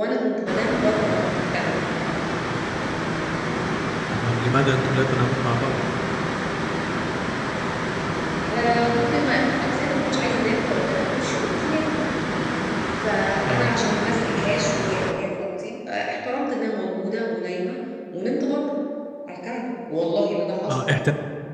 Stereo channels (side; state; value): both; identical; correlation 1.00